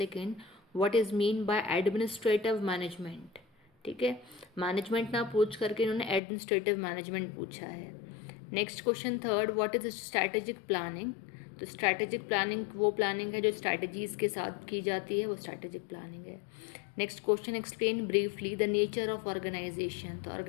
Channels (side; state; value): right; drops out; at 6.2 s